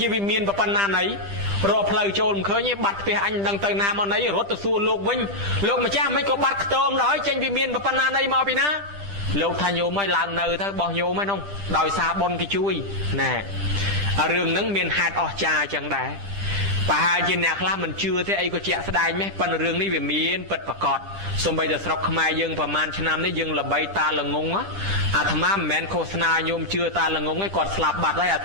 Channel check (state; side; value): late; left; 10 ms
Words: ាវិមានប៉ុណ្ណាណីរកផ្លូវចូលមិនឃើញទេបាត់ផ្ទះអញមិនដឹងទៅណាមកណីរត់ទៅសួរលោកវិញលោកម្ចាស់មិនក៏បាត់ខ្ទមដល់ចេញវិមានប៉ុណ្ណាណីមកពីណាលោកថាញោមឲ្យឡើងនៅទៅបោះញោមហ្នឹងដោយសារបុណ្យគេជួយណែរឿងហ្នឹងមានហេតុអស្ចារ្យចឹងដែរប្រហែលជាអ្នកខ្លះមិនជឿទេអីក៏ជាក់ស្ដែងម៉េះប៉ុន្តែរឿងនេះវាមានពិតប្រាកដសូម្បីតែស្រុកខ្មែរយើងប្រហែលឆ្នាំនេះយើងល្បីតាល្ងងអាត្មាមិនមែនឃោសនាញោមជឿតាល្ងងទេគាត់ស្លាប់បាត់ហើយអា